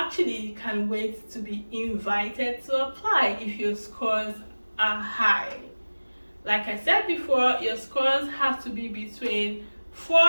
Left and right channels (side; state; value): both; inverted; correlation -1.00